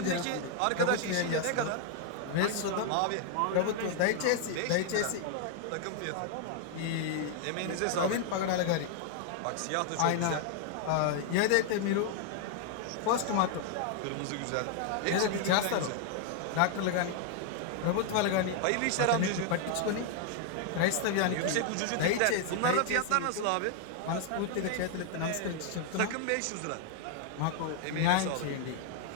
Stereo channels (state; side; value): different; both; correlation 0.00